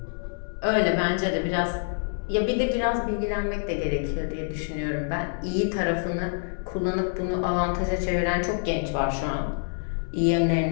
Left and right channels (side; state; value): right; silent; digital silence